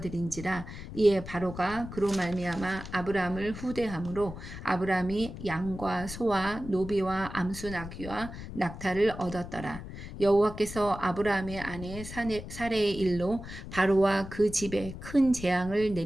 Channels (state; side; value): noise; left; rumble, 11 dB below the sound